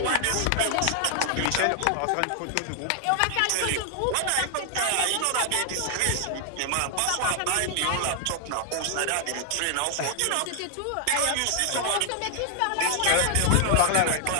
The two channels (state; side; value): different; both; correlation 0.00